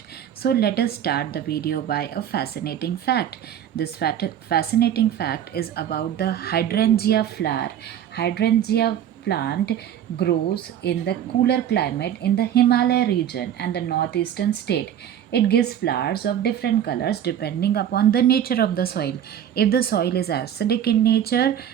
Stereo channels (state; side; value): quieter; left; 10.0 dB